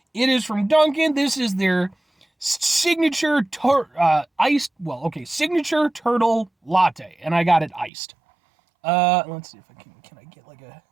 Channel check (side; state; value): left; drops out; at 7.9 s